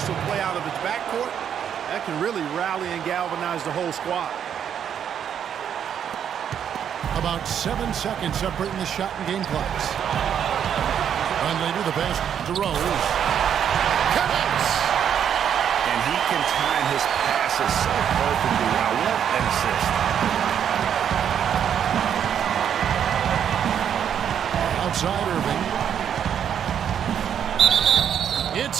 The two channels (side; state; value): left; quieter; 8.7 dB